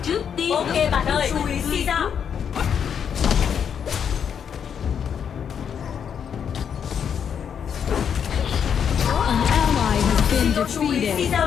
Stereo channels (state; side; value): quieter; right; 7.8 dB